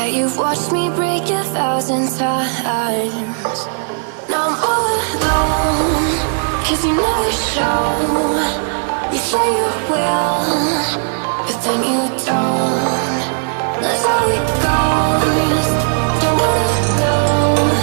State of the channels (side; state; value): left; silent; digital silence